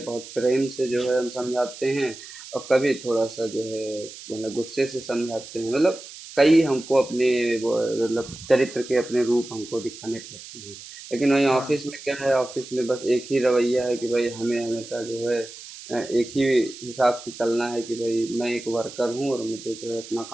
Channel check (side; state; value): right; noise; hiss, 15 dB below the sound